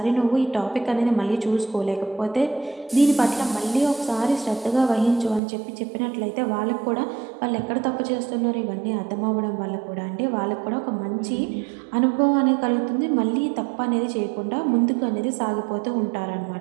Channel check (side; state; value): left; drops out; at 5.4 s